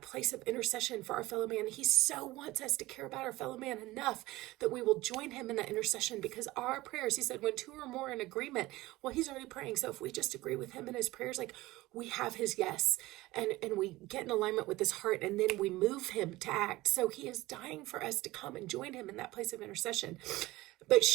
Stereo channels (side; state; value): left; quieter; 18.8 dB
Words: place of intercession for our fellow man. He so wants us to care about our fellow man enough that we will join him in that intercession, because our prayers, he said, when two or more in agreement, well, he's already praying. So if we just agree with him in his prayers, like we have his yes, and we get in alignment with his heart, and then we move him to act. So he is dying for us to come and join him in that place of intercession. But